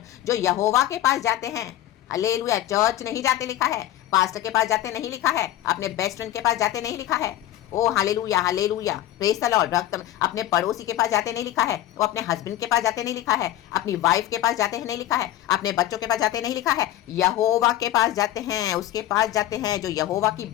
जो यहोवा के पास जाते हैं, हालेलुया। चर्च नहीं जाते लिखा है, पास्टर के पास जाते नहीं लिखा है, अपने बेस्ट फ्रेंड के पास जाते नहीं लिखा है, oh hallelujah hallelujah, praise the Lord. रक्त अपने पड़ोसी के पास जाते नहीं लिखा है, वो अपने हस्बैंड के पास जाते नहीं लिखा है, अपनी वाइफ के पास जाते हैं नहीं लिखा है, अपने बच्चों के पास जाते नहीं लिखा है, यहोवा के पास जाते हैं, उसके पास जाते हैं जो यहोवा की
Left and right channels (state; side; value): quieter; right; 13.4 dB